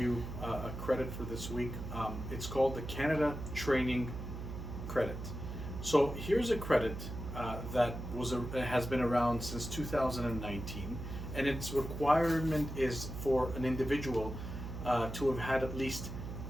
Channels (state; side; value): noise; right; hum, 7 dB below the sound